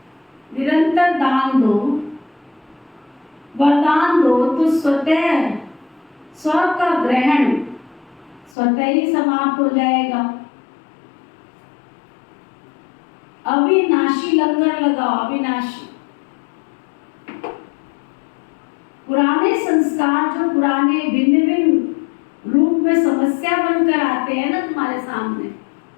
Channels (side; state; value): right; drops out; at 8.5 s